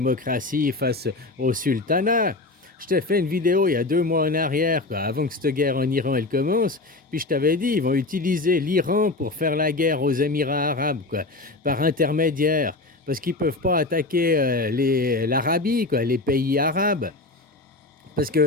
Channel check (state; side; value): quieter; right; 3.1 dB